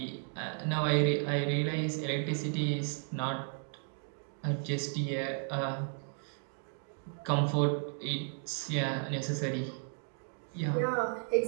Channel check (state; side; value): silent; left; 55 dB below the other